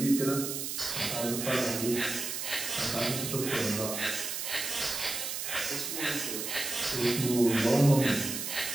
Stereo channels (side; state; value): right; noise; hiss, 4 dB below the sound